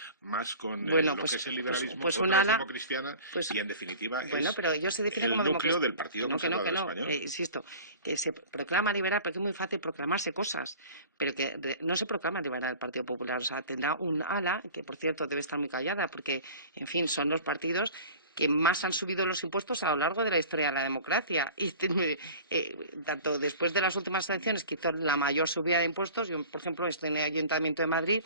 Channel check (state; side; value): inverted; both; correlation -0.42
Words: más con Bueno, lo pues- que es el pues- liberalismo, pues un otra es ala- democristiana pues- y en definitiva Bueno, es pero ellos se definen el como núcleo democracia. del Partido Conservador Español. Insisto, que se proclama liberal porque es muy fácil proclamarse cosas, pero que no se proclama liberal el Partido Popular. O sea, tendrá un ala, que por cierto debe estar muy callada porque, en fin, son los partidos que más han subido los impuestos a lo largo de la historia de la democracia. Y tanto después de las últimas elecciones, que hizo la mayor subida de impuestos, yo, por ejemplo, estoy en el Ayuntamiento de Madrid,